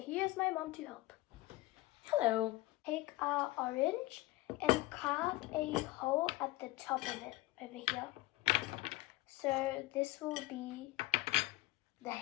my mom to help. Hello. Take our orange and carve a hole at the top of it over here. So this will be the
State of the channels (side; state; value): right; quieter; 19.0 dB